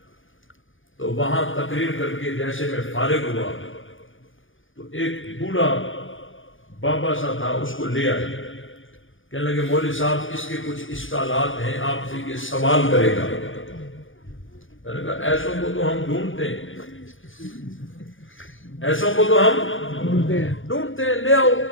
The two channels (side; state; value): right; late; 0.58 ms